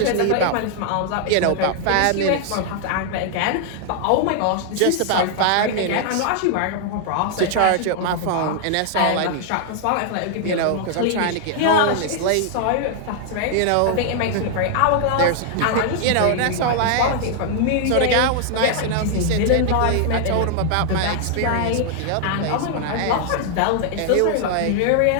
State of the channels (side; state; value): both; different; correlation 0.00